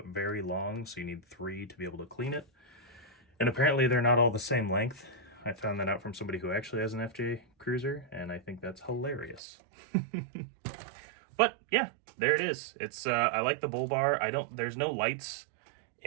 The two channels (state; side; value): drops out; left; at 9.4 s